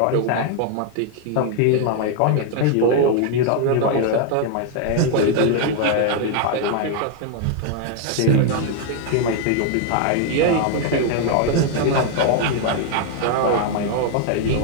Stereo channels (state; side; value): different; both; correlation 0.00